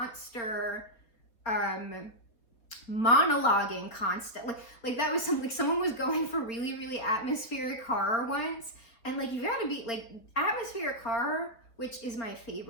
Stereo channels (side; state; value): right; late; 4.2 ms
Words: monologuing constantly. Like that was something, like someone was going for really, really atmospheric horror once. And like, you gotta be like, atmospheric horror, which is my